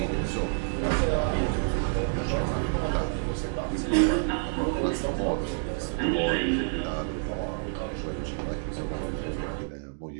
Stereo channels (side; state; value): left; silent; 59 dB below the other